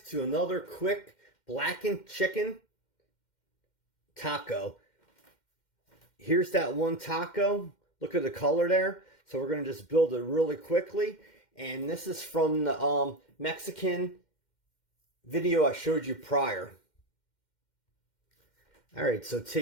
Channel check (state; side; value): late; right; 2.1 ms